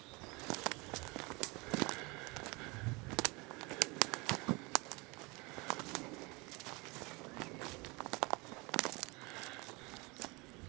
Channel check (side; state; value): left; quieter; 26.3 dB